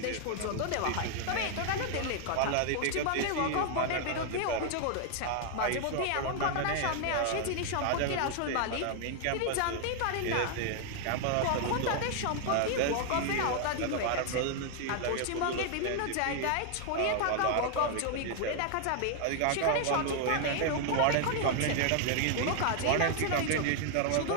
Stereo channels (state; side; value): different; both; correlation 0.00